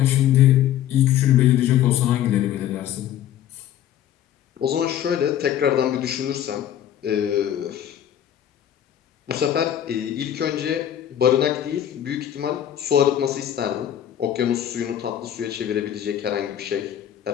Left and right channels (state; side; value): quieter; right; 10.9 dB